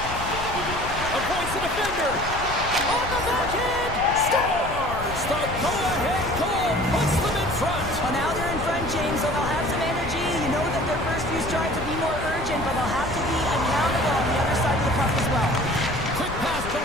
Avoids the defender. On the backhand. Scores! The go-ahead goal puts them in front. Well, now they're in front, James, so they'll have some energy. You know that their first few strides will be more urgent, but they'll have to be accountable on the other side of the puck as well. Quick pass to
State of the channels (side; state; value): left; noise; rumble, 9 dB below the sound